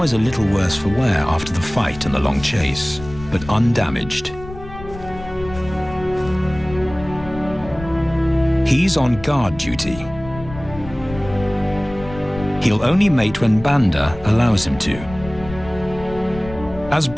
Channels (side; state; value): left; noise; rumble, 14 dB below the sound